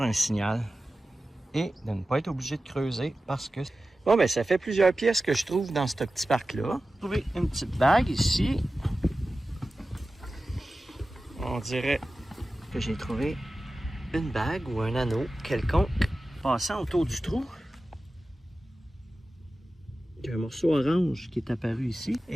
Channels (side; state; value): both; normal; correlation 0.95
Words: un signal et de ne pas être obligé de creuser parce que... Bon, ben ça fait plusieurs pièces que je trouve dans ce petit parc-là. J'ai trouvé une petite bague ici. On dirait que j'ai trouvé une bague ou un anneau quelconque passant autour du trou. Il y a un morceau orange qui est apparu ici